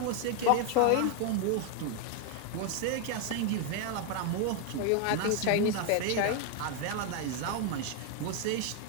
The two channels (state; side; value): different; both; correlation 0.01